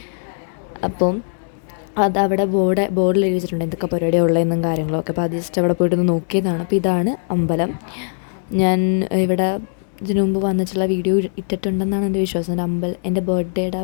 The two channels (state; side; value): silent; right; 66 dB below the other